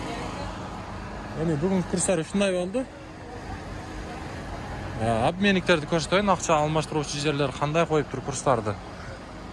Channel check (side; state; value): both; identical; correlation 1.00